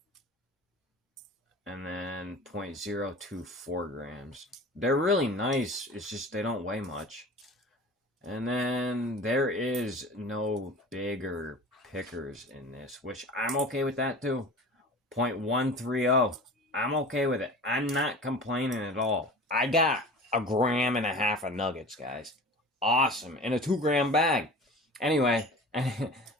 And then 0.024 grams. They're really nice. It's just they don't weigh much. And then there is no bigger pickers in this, which I'm okay with that too. 0.130. I'm okay with it. I'm not complaining at all. I got 1.5 grams of nuggets, guys. Awesome. In a 2 gram bag. Anyway,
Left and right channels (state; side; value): normal; both; correlation 0.38